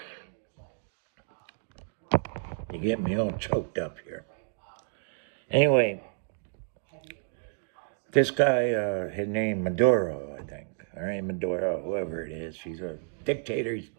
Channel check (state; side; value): silent; left; digital silence